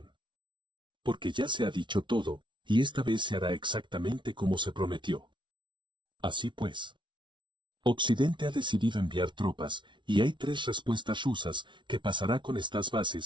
Porque ya se ha dicho todo, y esta vez se hará exactamente como se prometió. Así pues. Occidente ha decidido enviar tropas, y hay 3 respuestas rusas. ¿Qué pasará con estas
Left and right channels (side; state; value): left; late; 0.24 ms